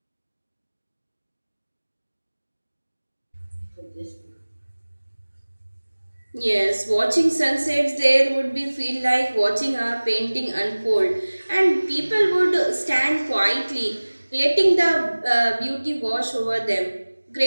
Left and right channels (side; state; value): both; inverted; correlation -1.00